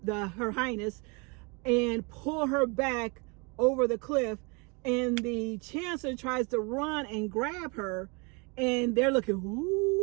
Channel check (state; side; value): quieter; left; 31.0 dB